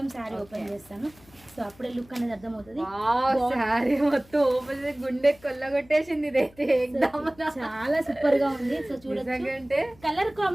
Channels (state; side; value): noise; left; hum, 26 dB below the sound